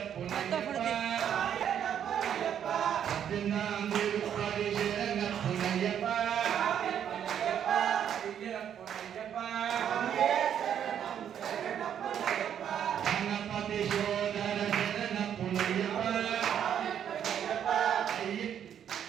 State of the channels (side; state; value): left; quieter; 9.2 dB